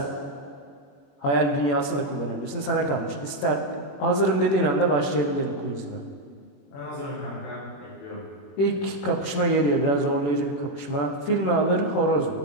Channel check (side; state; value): right; late; 21 ms